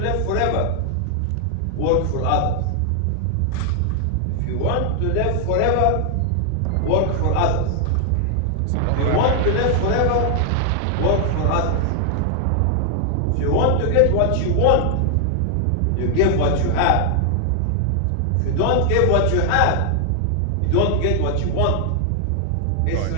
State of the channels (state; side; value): different; both; correlation 0.00